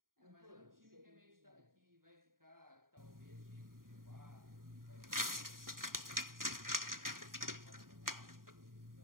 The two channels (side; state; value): left; late; 0.91 ms